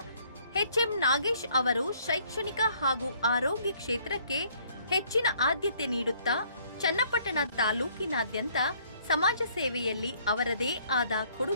ಎಚ್.ಎಂ. ನಾಗೇಶ್ ಅವರು ಶೈಕ್ಷಣಿಕ ಹಾಗೂ ಆರೋಗ್ಯ ಕ್ಷೇತ್ರಕ್ಕೆ ಹೆಚ್ಚಿನ ಆದ್ಯತೆ ನೀಡುತ್ತಾ ಚನ್ನಪಟ್ಟಣ ತಾಲೂಕಿನಾದ್ಯಂತ ಸಮಾಜ ಸೇವೆಯಲ್ಲಿ ಅವರದೇ ಆದ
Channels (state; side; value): inverted; both; correlation -0.62